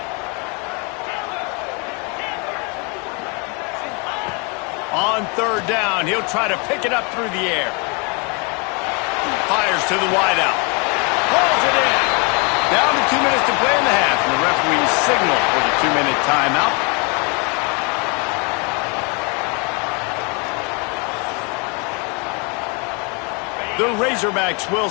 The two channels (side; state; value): right; quieter; 33.0 dB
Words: On 3rd down, he'll try to pick it up through the air. Fires to the wideout. Pulls it in. Down to 2 minutes to play in the half, and the referee signal for the 2-minute timeout. The Razorbacks will